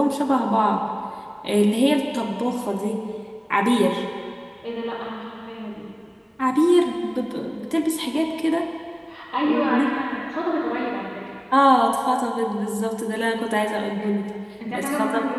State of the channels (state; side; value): identical; both; correlation 1.00